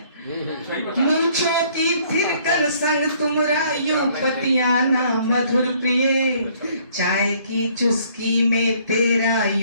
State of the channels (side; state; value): both; inverted; correlation -0.61